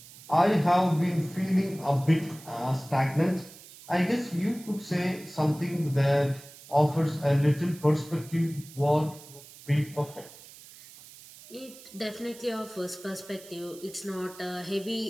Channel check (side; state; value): right; noise; hiss, 19 dB below the sound